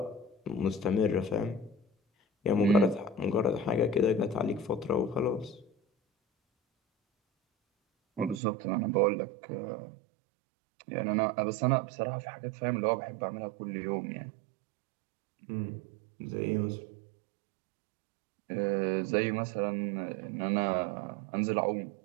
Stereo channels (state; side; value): drops out; left; at 8.4 s